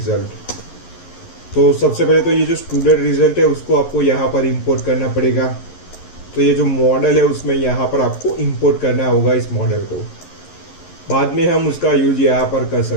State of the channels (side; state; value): right; late; 11 ms